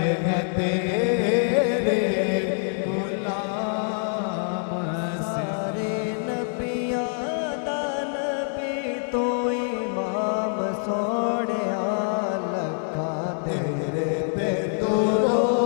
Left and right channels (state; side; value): silent; right; 62 dB below the other